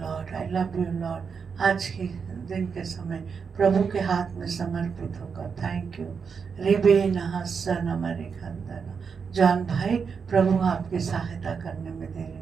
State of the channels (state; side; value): quieter; left; 6.0 dB